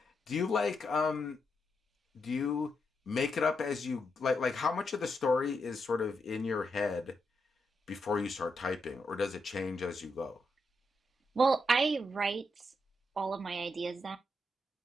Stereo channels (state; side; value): normal; both; correlation 0.82